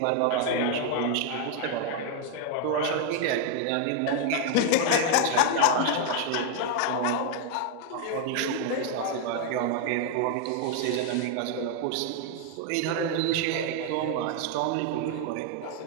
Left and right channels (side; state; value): both; different; correlation 0.00